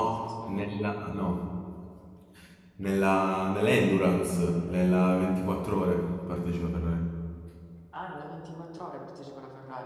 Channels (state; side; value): identical; both; correlation 1.00